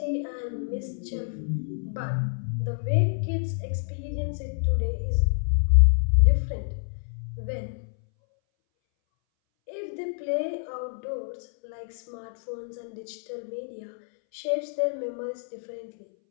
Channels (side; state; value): right; silent; 59 dB below the other